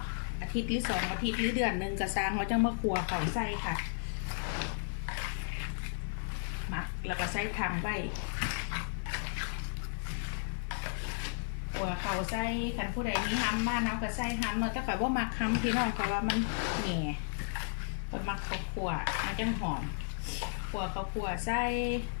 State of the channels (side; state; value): right; silent; digital silence